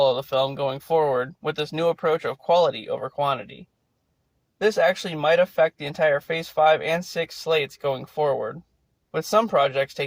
of the film going forward with this new approach of quality over quantity. This actually might affect the entire Phase 5 and 6 slates going forward, with some projects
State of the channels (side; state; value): both; identical; correlation 1.00